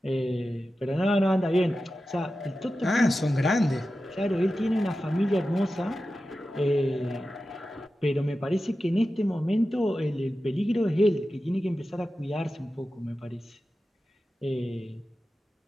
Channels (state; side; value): normal; both; correlation 0.93